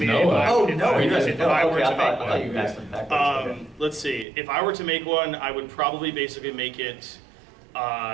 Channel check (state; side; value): drops out; left; at 4.2 s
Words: me. Noah. Oh, no, you're asking if I were okay, to I make thought you one. asked them backwards. Okay. Let's see. If I were to make one, I would probably basically make it